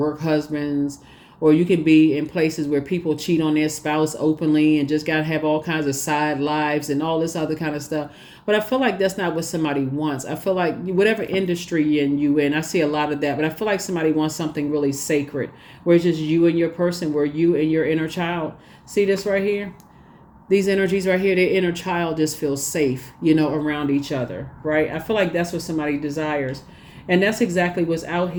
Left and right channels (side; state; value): both; identical; correlation 1.00